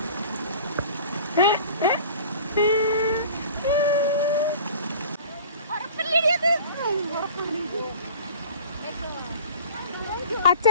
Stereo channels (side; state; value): both; inverted; correlation -0.43